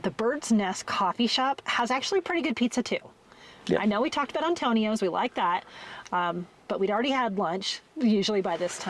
Bird's Nest coffee shop has actually pretty good pizza too. Yep. I know we talked about Antonio's, we like that, but we'd already had lunch, usually by this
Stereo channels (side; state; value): both; identical; correlation 1.00